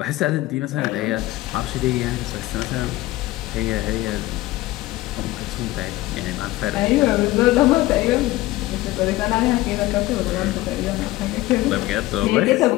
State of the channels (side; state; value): right; quieter; 17.8 dB